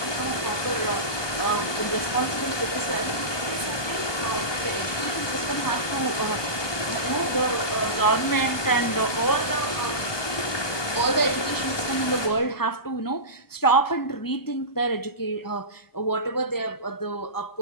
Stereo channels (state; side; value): late; right; 1.2 ms